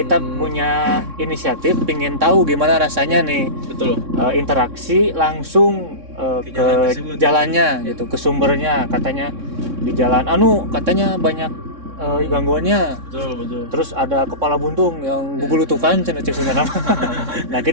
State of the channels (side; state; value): left; late; 3.6 ms